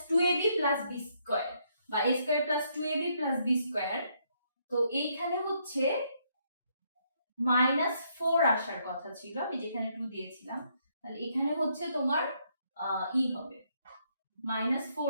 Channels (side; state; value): both; inverted; correlation -0.73